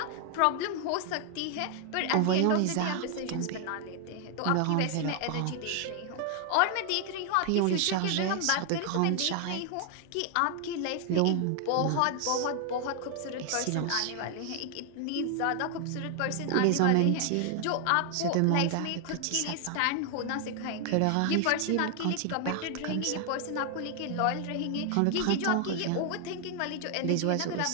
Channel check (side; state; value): both; different; correlation 0.00